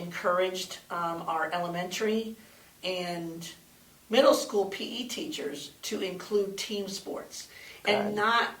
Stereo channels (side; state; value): both; identical; correlation 1.00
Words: our elementary and middle school PE teachers to include team sports and not